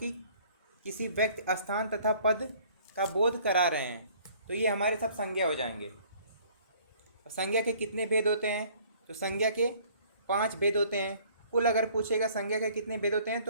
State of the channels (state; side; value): inverted; both; correlation -0.56